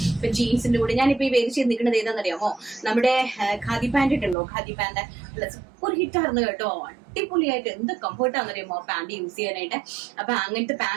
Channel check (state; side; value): drops out; left; at 4.4 s